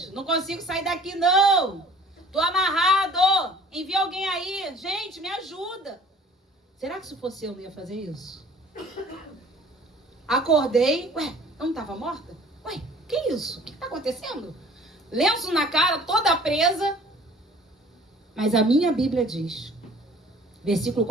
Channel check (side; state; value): both; normal; correlation 0.51